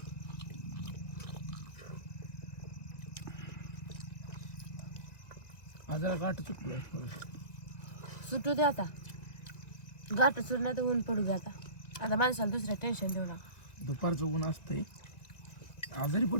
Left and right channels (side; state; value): right; late; 1.9 ms